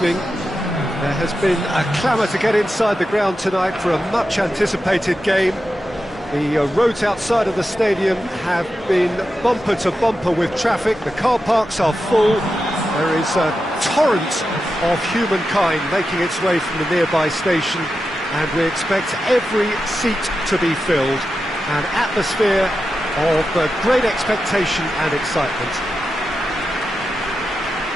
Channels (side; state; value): both; normal; correlation 0.90